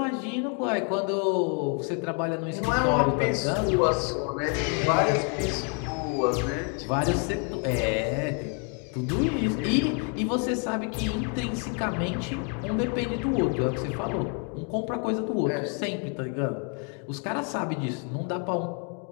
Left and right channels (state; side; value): quieter; right; 37.3 dB